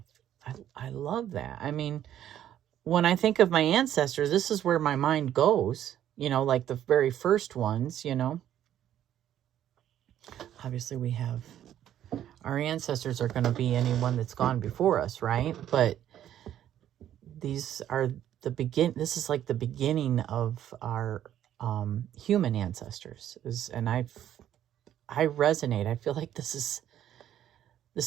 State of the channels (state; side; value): quieter; left; 11.2 dB